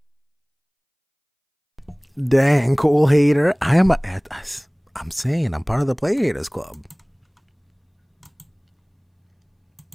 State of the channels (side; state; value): both; identical; correlation 1.00